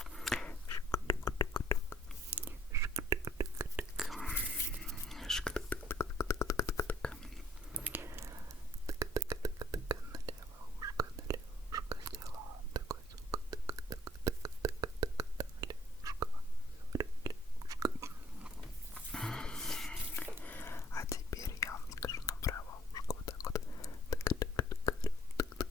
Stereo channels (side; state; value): both; normal; correlation 0.61